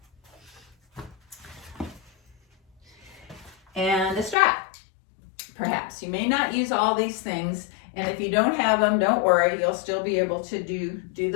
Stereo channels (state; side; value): drops out; right; at 4.4 s